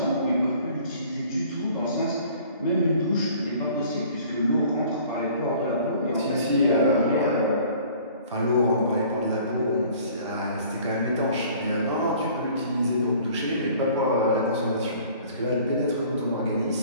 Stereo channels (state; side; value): inverted; both; correlation -0.52